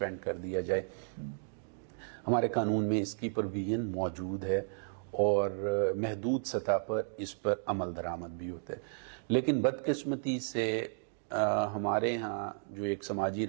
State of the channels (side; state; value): left; silent; digital silence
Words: کر دیا جائے، ہمارے قانون میں اس کی پروویژن موجود ہے اور محدود سطح پر اس پر عمل درآمد بھی ہوتا ہے. لیکن بدقسمتی سے ہمارے ہاں جو ایک سماجی